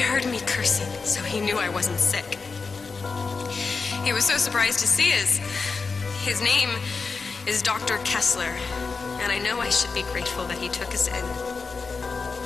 me cursing, so he knew I wasn't sick. He was so surprised to see us. His name is Dr. Kessler, and I know I should be grateful that he took us in.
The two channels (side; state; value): right; quieter; 4.6 dB